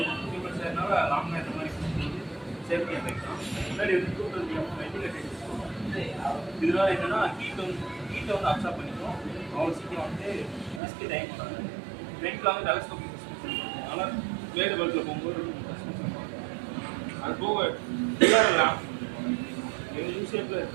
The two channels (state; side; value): drops out; left; at 10.8 s